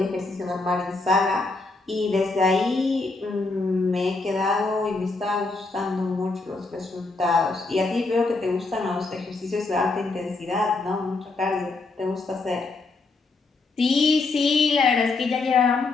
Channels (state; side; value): quieter; right; 3.6 dB